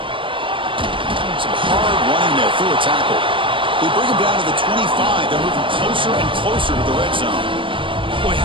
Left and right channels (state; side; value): late; left; 0.25 ms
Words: Some hard running there through a tackle. They bring him down to the 25. They're moving closer and closer to the red zone. Boy,